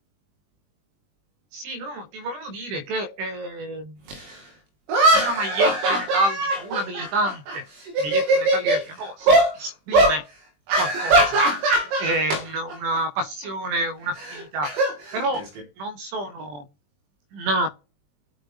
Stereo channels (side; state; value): left; late; 20 ms